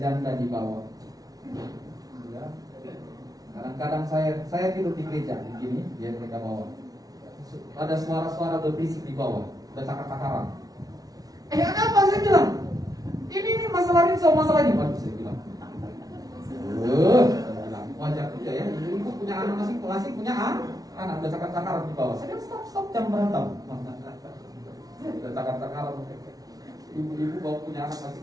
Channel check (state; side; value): late; left; 0.18 ms